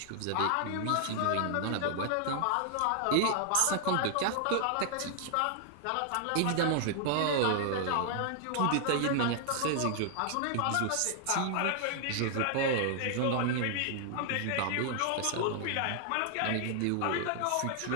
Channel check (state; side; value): different; both; correlation 0.00